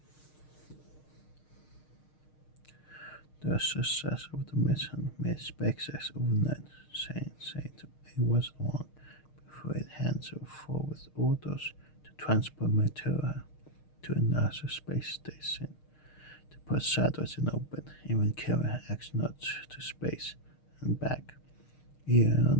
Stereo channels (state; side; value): late; right; 6.5 ms